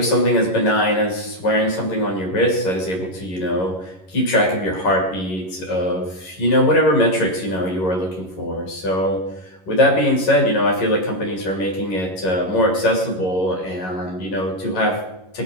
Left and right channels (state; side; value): late; right; 11 ms